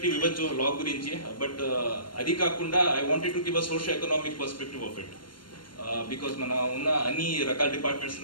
ఇవ్వచ్చు లా గురించి, but అది కాకుండా I wanted to give a socio-economic perspective of it. Because మన ఉన్న అన్ని రకాల departments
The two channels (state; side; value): late; right; 0.72 ms